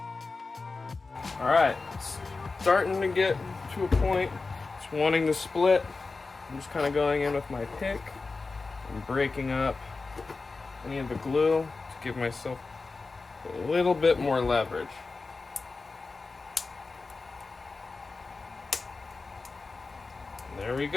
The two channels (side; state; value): right; quieter; 3.9 dB